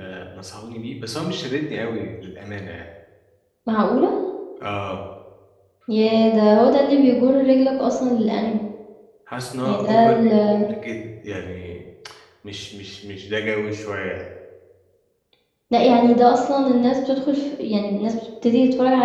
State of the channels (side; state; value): both; identical; correlation 1.00